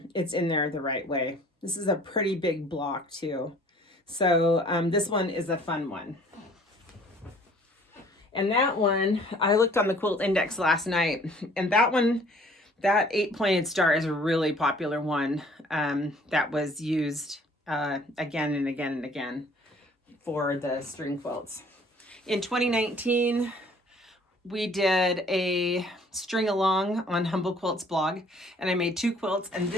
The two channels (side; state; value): both; normal; correlation 0.55